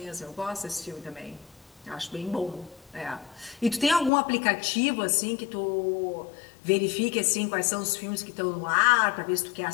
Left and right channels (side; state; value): right; drops out; at 4.1 s